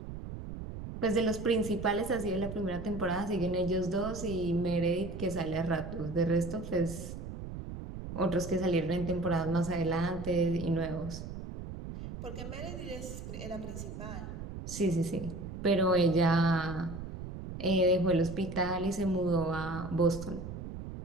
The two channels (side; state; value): right; noise; rumble, 9 dB below the sound